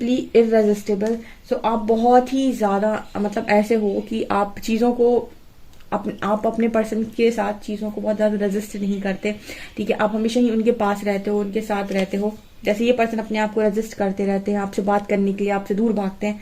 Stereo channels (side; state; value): both; identical; correlation 1.00